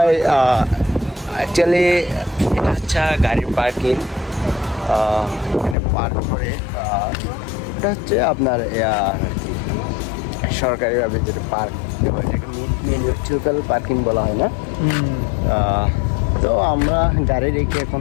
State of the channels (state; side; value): drops out; right; at 5.8 s